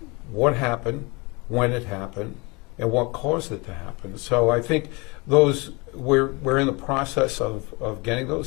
what happened, when it happened, and what caused it to happen. So I think we're in the process of getting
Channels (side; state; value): right; quieter; 27.4 dB